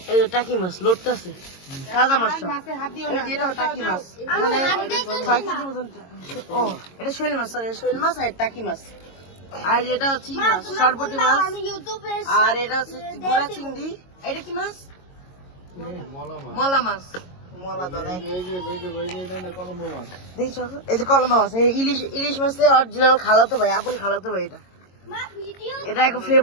এই যে টাকি মাছ লোডটা আছে, তাজা মাছ সব। এটা টাকি মাছ, মানে 6 কেজির মতন। ও এটা শৈল মাছ, সরি শৈল মাছ আর টাকি মাছ। আর এটা হচ্ছে মাছ সরবটি মাছ, আর এটা হচ্ছে গুড়া চিংড়ি। এটা কি মাছ? মলা মাছ, মলা দলে দেখছো, এই যে কলম্বা মাছ, ইলিশ মাছের অরিজিনাল খালাতো ভাই, আপন খালাতো ভাই। এটা একটা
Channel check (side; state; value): right; late; 22 ms